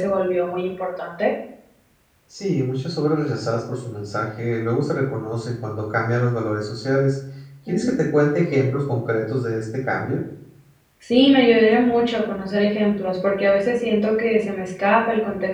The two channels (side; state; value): both; identical; correlation 1.00